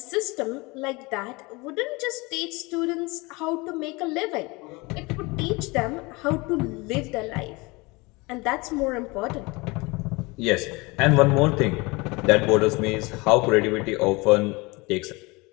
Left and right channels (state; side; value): quieter; right; 25.1 dB